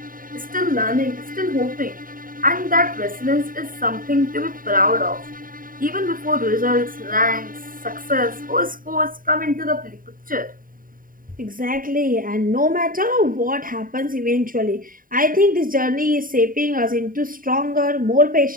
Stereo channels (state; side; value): late; left; 0.41 ms